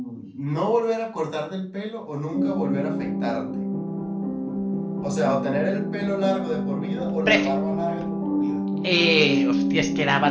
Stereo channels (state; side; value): identical; both; correlation 1.00